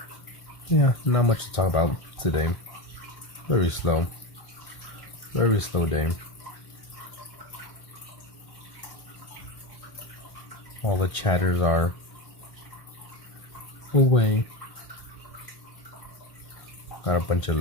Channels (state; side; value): late; right; 1.5 ms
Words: Yeah, not much to talk about today. Very slow. Very slow day. All the chatters are away. Got a bunch of